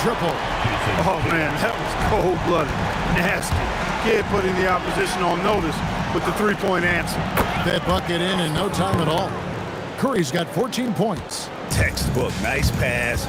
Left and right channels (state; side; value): identical; both; correlation 1.00